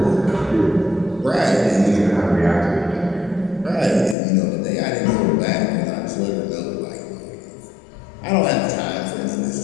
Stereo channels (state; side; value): drops out; right; at 4.2 s